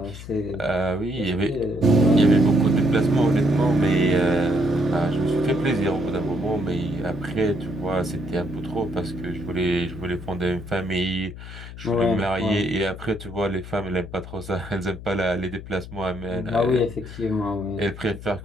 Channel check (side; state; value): left; noise; hum, 13 dB below the sound